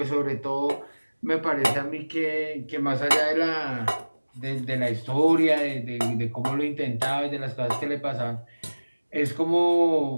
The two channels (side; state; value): both; inverted; correlation -1.00